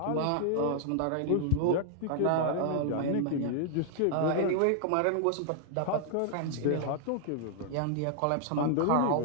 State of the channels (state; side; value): different; both; correlation -0.01